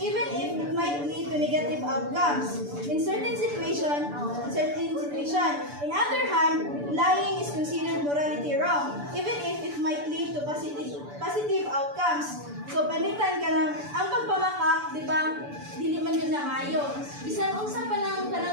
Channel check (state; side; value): late; left; 6.9 ms